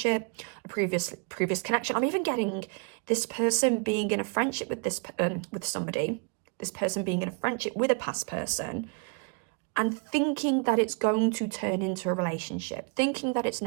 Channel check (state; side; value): quieter; left; 36.0 dB